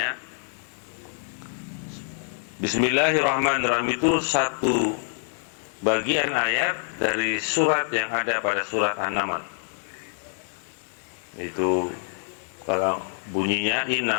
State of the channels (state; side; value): silent; right; digital silence